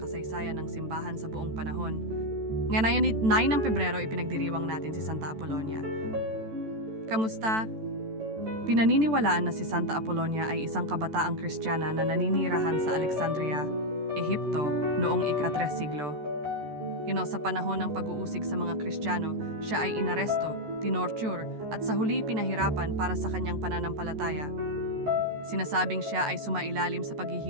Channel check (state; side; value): late; left; 14 ms